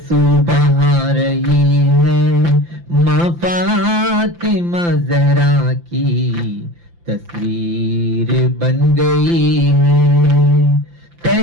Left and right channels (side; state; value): left; late; 5.8 ms